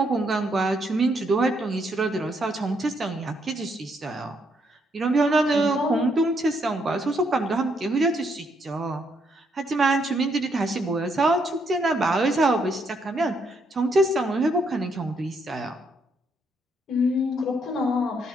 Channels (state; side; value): normal; both; correlation 0.74